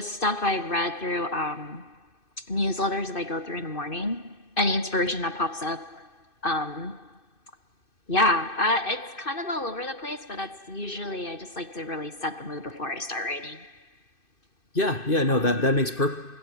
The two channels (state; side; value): late; right; 2.6 ms